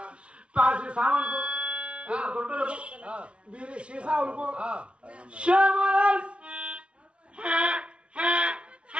ప్లాస్టిక్ సామాన్కు గుంటలకు బీరి సీసాలకు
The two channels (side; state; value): left; late; 0.060 ms